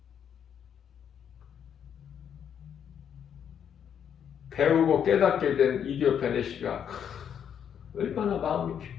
배우고 깨닫게 된 이디오피아 내시가 얼마나 마음이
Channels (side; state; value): right; quieter; 8.5 dB